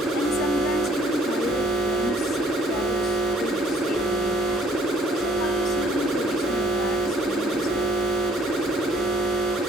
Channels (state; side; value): normal; both; correlation 0.59